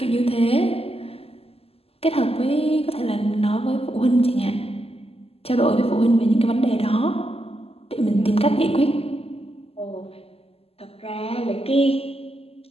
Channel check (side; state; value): right; late; 0.29 ms